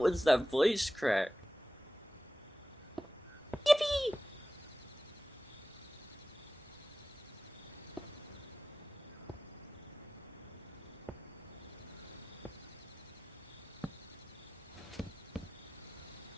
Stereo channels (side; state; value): both; normal; correlation 0.95